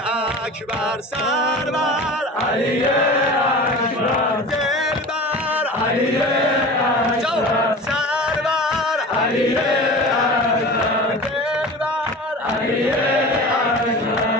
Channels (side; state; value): both; normal; correlation 0.35